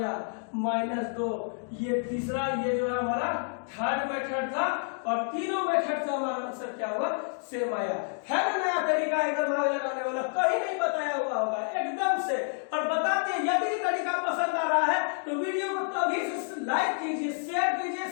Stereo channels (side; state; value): right; silent; 59 dB below the other